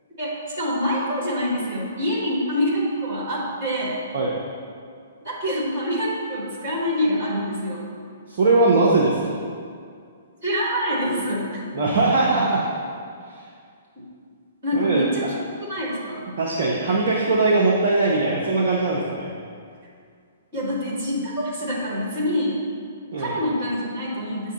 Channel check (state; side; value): inverted; both; correlation -0.56